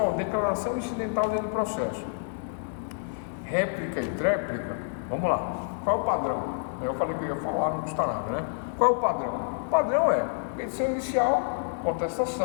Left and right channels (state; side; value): silent; right; digital silence